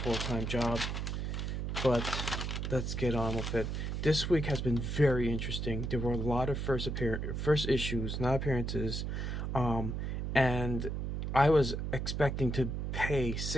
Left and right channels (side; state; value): right; noise; hum, 2 dB below the sound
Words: job. But let's get on with it. This week has been very interesting. There were a lot of first issues, not appearances, and I was expecting to pay